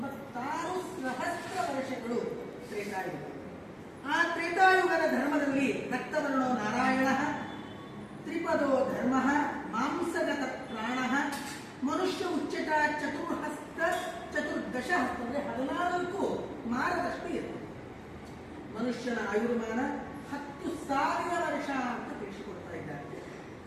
ವರ್ಷಗಳು ತ್ರೇತಾಯುಗ. ಆ ತ್ರೇತಾಯುಗದ ಧರ್ಮದಲ್ಲಿ ರಕ್ತವರ್ಣೋ ನಾರಾಯಣ, ತ್ರಿಪದೋ ಧರ್ಮ, ಮಾಂಸಗತ ಪ್ರಾಣ, ಮನುಷ್ಯ ಉಚ್ಚಟ ಚತುರ್ಹಸ್ತ ಚತುರ್ದಶ ಹಸ್ತ ಅಂದರೆ 14 ಮಾರದಷ್ಟು ಇರ್ತದೆ. ಮನುಷ್ಯನ ಆಯುರ್ಮಾನ 10,000 ವರ್ಷ ಅಂತ ತಿಳಿಸಿಕೊಡ್ತಾ ಇದ್ದಾರೆ.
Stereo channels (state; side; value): identical; both; correlation 1.00